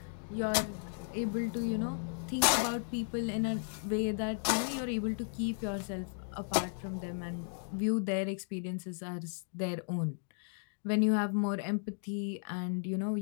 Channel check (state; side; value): silent; right; digital silence